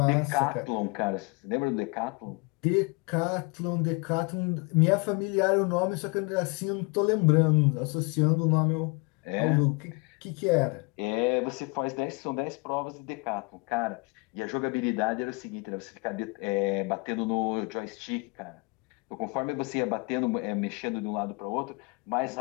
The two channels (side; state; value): right; quieter; 28.8 dB